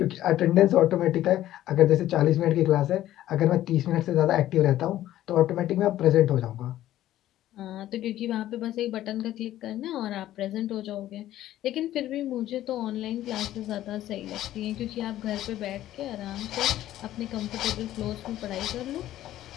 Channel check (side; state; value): right; quieter; 13.5 dB